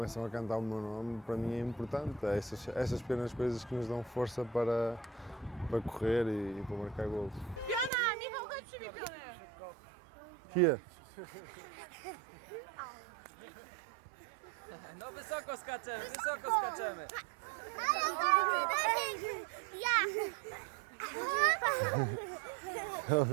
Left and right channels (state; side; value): drops out; left; at 7.9 s